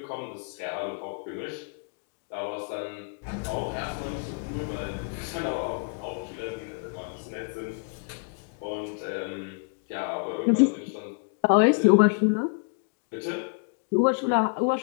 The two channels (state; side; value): quieter; right; 38.0 dB